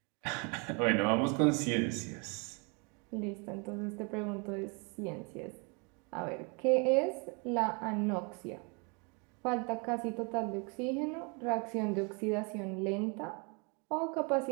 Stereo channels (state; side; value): quieter; left; 33.3 dB